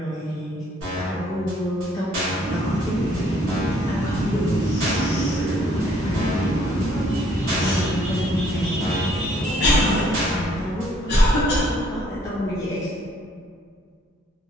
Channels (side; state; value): both; normal; correlation 0.64